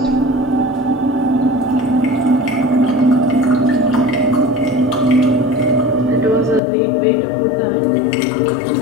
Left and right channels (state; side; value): drops out; right; at 6.6 s